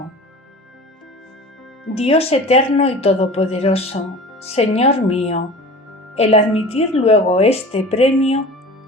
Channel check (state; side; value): normal; both; correlation 0.38